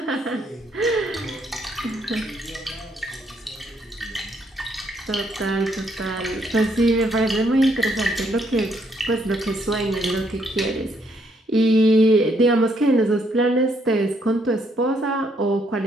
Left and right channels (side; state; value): both; normal; correlation 0.72